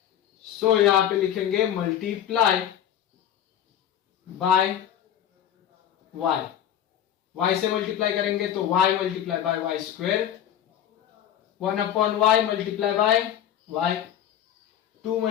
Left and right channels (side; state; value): right; quieter; 10.4 dB